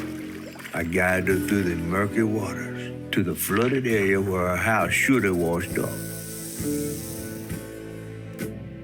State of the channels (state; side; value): identical; both; correlation 1.00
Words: I guided her through the murky waters to the flooded area where her house should have washed up.